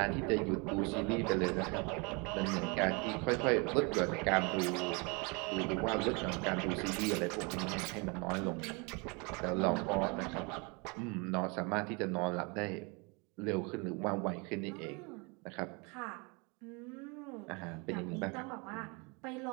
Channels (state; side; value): quieter; left; 30.5 dB